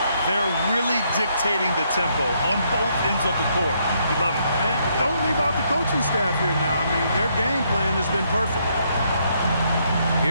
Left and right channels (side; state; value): both; inverted; correlation -0.73